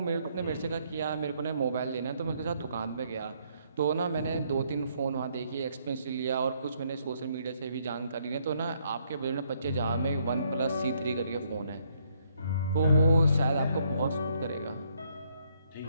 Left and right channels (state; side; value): inverted; both; correlation -0.70